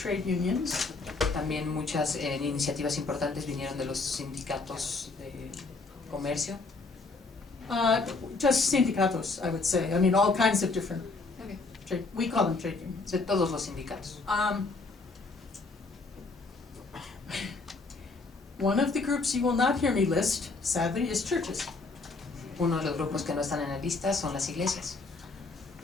unions. También muchas iniciativas importantes vinieron de los sindicatos de comercio. Just sindicatos, I would say. I mean, all kinds of different. Okay. We call them trade unions. De todos los sindicatos. One of the groups you will not hear me list, sadly, is churches. Uno de los grupos que no están en la lista son las iglesias.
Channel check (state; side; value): quieter; right; 3.8 dB